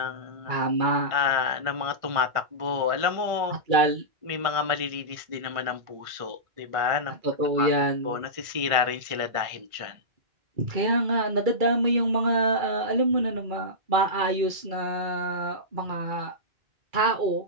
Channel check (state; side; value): late; left; 2.3 ms